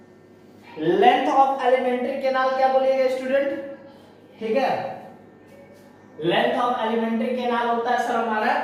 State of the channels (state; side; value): identical; both; correlation 1.00